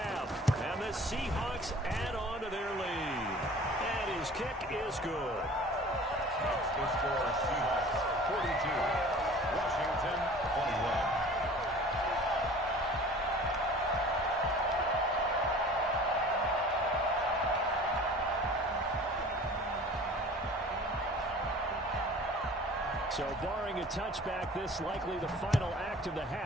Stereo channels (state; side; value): normal; both; correlation 0.44